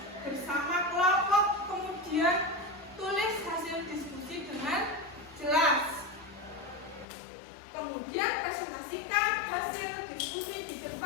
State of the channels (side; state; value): right; drops out; at 7.1 s